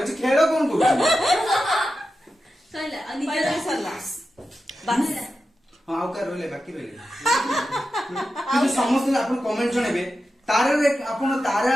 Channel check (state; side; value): normal; both; correlation 0.91